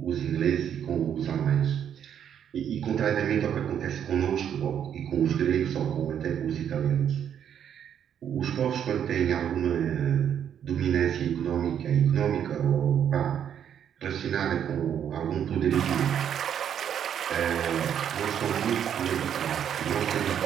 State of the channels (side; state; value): left; quieter; 9.0 dB